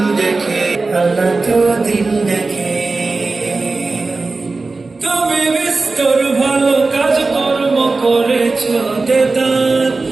দেখে, আল্লাহ তো দিল দেখে। তুমি বিস্তর ভালো কাজ কর্ম করেছ দেদার,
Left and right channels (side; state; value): left; quieter; 3.7 dB